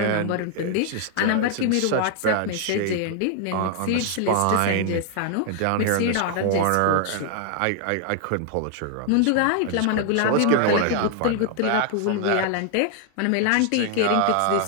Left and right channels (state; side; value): different; both; correlation 0.00